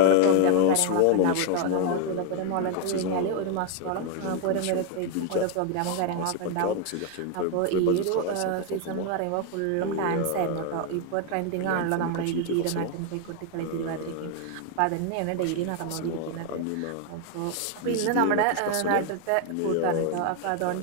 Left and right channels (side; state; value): both; different; correlation 0.00